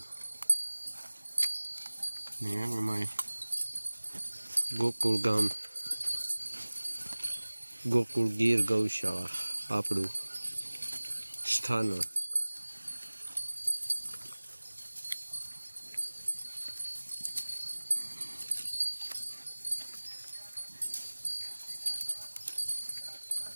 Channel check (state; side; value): inverted; both; correlation -1.00